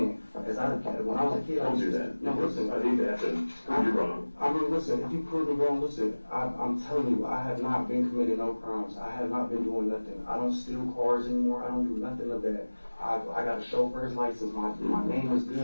When I was a kid, Don't do that. No, listen. I hate to have to prove you wrong. I mean, listen, if you prove me wrong, listen, I'm telling you, I have not been committing no crimes. I have not been doing nothing. I don't steal cars anymore. I don't do nothing of that. I got a chauffeur's license. My name is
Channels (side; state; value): both; inverted; correlation -1.00